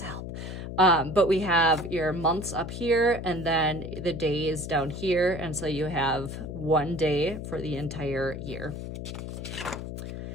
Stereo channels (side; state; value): left; noise; hum, 7 dB below the sound